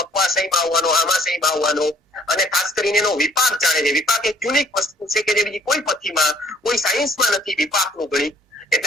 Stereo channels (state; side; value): normal; both; correlation 0.59